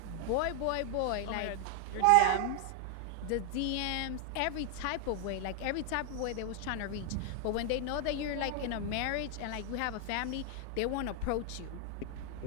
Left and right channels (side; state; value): both; different; correlation 0.00